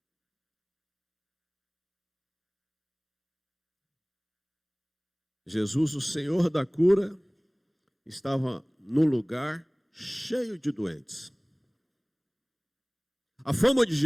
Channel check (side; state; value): both; identical; correlation 1.00